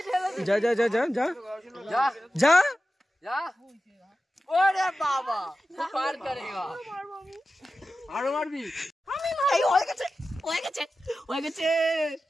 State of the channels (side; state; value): both; normal; correlation 0.93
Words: যা যা যা যা যা যা যা ওরে বাবা পার করেগা আরো মারবি এই হয়ে গেছে